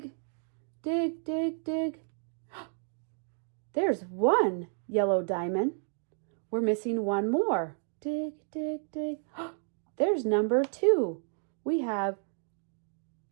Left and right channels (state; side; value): silent; left; 57 dB below the other